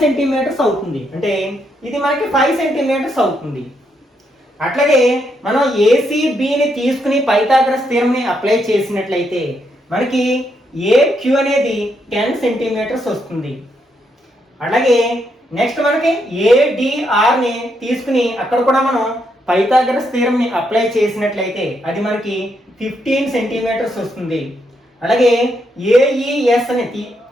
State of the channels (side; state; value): both; normal; correlation 0.78